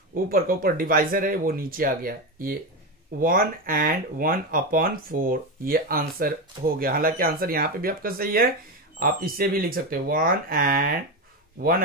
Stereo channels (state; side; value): normal; both; correlation 0.14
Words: ऊपर का ऊपर डिवाइजर है वो नीचे आ गया। ये 1 and 1/4 ये आंसर हो गया। हालांकि आंसर यहां पे भी आपका सही है, आप इससे भी लिख सकते हो 1 and